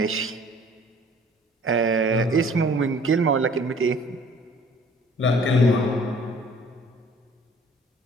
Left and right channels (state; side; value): normal; both; correlation 0.53